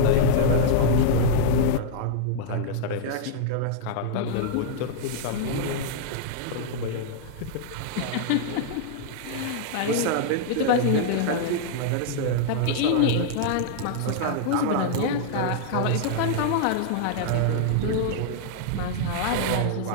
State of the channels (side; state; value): both; different; correlation -0.01